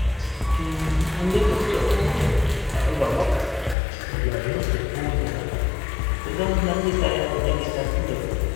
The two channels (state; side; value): drops out; right; at 3.8 s